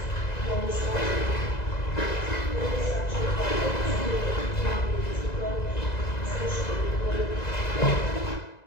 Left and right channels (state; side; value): late; right; 2.0 ms